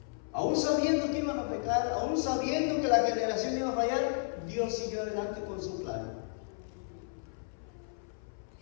Aún sabiendo que iban a pecar, aún sabiendo que la generación iba a fallar, Dios siguió adelante con su plan.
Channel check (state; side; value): silent; right; 56 dB below the other